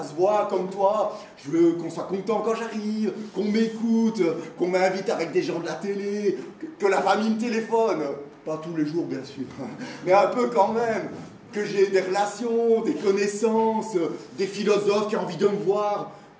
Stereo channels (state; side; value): identical; both; correlation 1.00